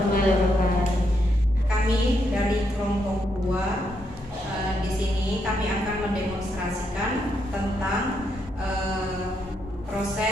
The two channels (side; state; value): both; normal; correlation 0.78